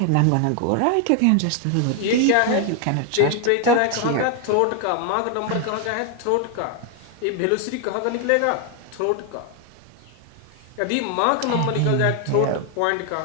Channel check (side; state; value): both; different; correlation 0.00